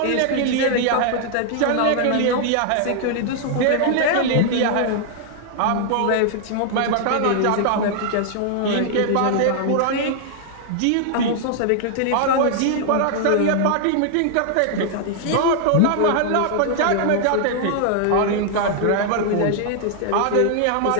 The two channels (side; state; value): both; different; correlation 0.00